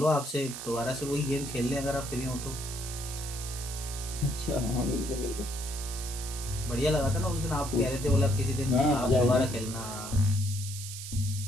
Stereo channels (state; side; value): noise; right; hiss, 9 dB below the sound